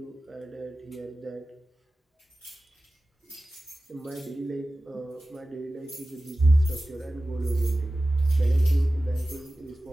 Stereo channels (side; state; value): both; normal; correlation 0.96